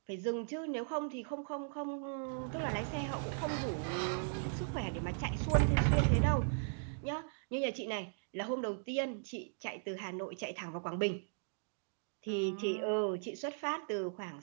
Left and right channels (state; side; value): silent; left; digital silence